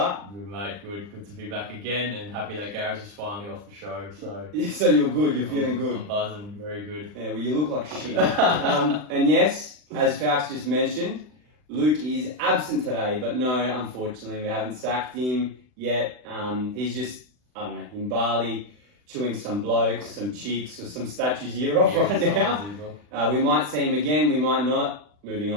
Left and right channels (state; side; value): late; left; 40 ms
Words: Good, mate. Good to be back again, and happy that Gareth is finally off the show. So you're good, you're feeling good. I'm buzzing, very good. Yeah, well, you look like shit. And yes, as FALCS just mentioned, Luke is absent today, but no, unfortunately, we haven't sacked him yet. He's just, I don't know, in Bali, chewing some blokes, some cheeks, or some statues ear off right now. We might see him again, we might not. Moving